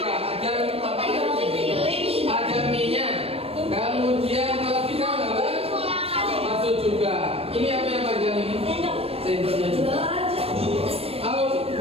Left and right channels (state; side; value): late; left; 0.28 ms